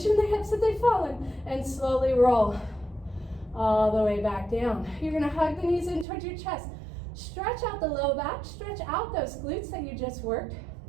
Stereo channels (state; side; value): drops out; left; at 6.1 s